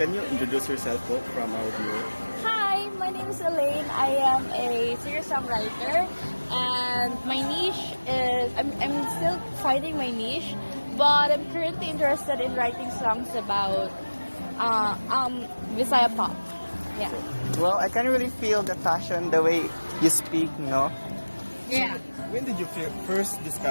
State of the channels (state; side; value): inverted; both; correlation -1.00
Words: you introduce yourself po from our viewer? Hi, my name is Elaine. I am a singer-songwriter and my niche is, I'm still finding my niche, but I'm currently interested in writing songs about Visaya pop. Yeah. Well, I can really feel the passion, the way you speak, no? Yeah. When did you first